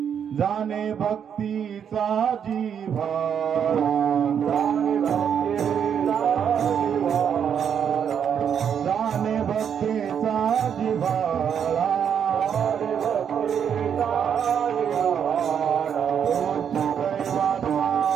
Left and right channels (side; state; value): left; quieter; 8.1 dB